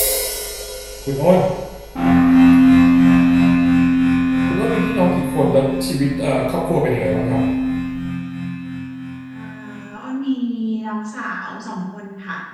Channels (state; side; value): identical; both; correlation 1.00